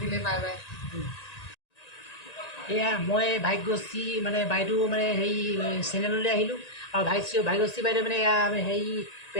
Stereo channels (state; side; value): late; right; 1.9 ms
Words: বাই এয়া মই ভাগ্যশ্ৰী মানে বাইদেউ মানে হেৰি চেনেললৈ আহিলোঁ আৰু ভাগ্যশ্ৰী বাইদেউ মানে এয়া হেৰি